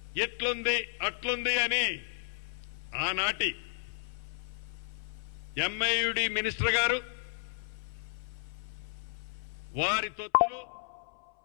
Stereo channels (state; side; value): silent; right; 56 dB below the other